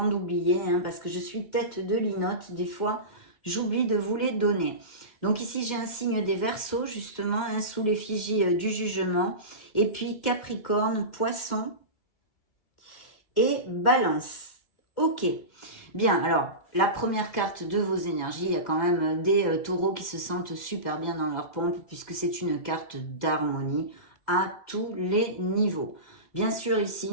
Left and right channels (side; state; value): right; late; 2.1 ms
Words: d'oublier, hein, parce que je suis tête de linotte. Des fois, j'oublie de vous les donner. Donc ici, j'ai un signe des Verseaux, justement, hein, sous l'effigie du jugement. Et puis Capricorne, Poisson et Balance. Ok. Bien, alors, la première carte de vos énergies, il y a quand même des taureaux qui se sentent super bien dans leur pompe, puisque c'est une carte d'harmonie à tous les niveaux. Bien sûr, ici,